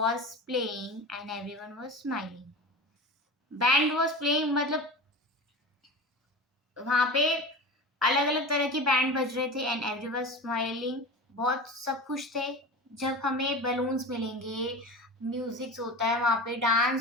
playing and everyone was smiling. Band was playing मतलब वहां पे अलग अलग तरह के बैंड बज रहे थे एंड एवरीवन स्माइलिंग। बहुत सब खुश थे। जब हमें बलून्स मिलेंगे, म्यूजिक होता है वहां पे,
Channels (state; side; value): normal; both; correlation 0.31